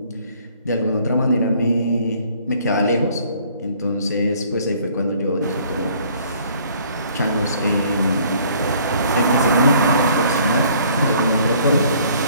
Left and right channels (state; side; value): inverted; both; correlation -0.58